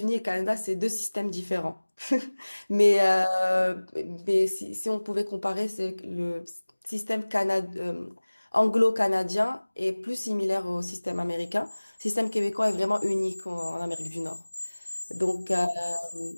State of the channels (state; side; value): inverted; both; correlation -1.00